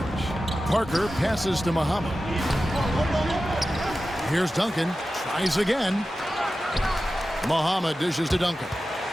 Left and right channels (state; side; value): normal; both; correlation 0.93